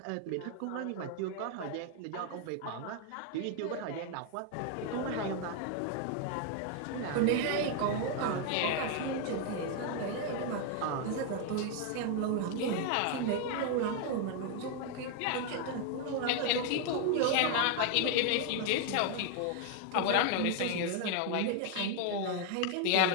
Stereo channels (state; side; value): different; both; correlation 0.00